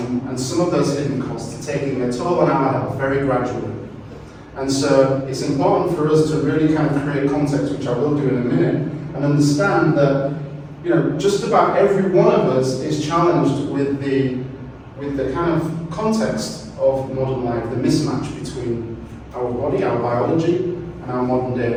some of those hidden costs are taking their toll on our health very gradually. And so it's important for us to really kind of create context, which I will do in a minute, and understand that just about every one of us is challenged with the kind of context of modern life, the mismatch between our body, our biology, and our modern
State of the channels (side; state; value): both; identical; correlation 1.00